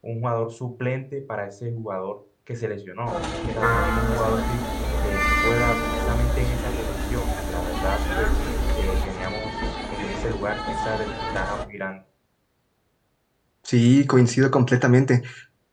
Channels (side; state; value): both; identical; correlation 1.00